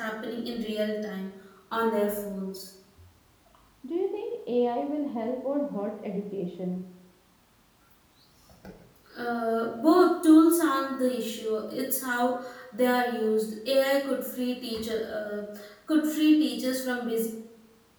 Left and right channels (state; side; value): identical; both; correlation 1.00